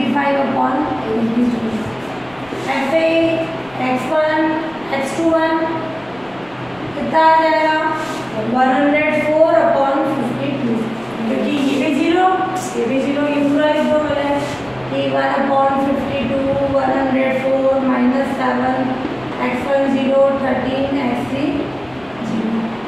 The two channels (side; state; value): left; noise; rumble, 26 dB below the sound